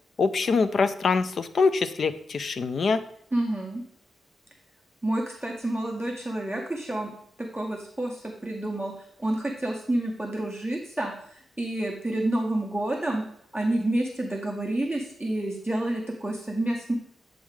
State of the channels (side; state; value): both; normal; correlation 0.90